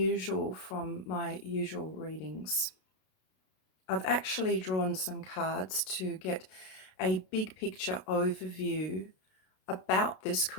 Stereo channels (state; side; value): late; right; 32 ms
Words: from my usual readings. I've actually drawn some cards to get a big picture overview about this